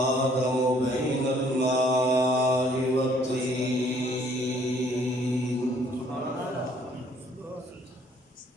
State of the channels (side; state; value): both; normal; correlation 0.62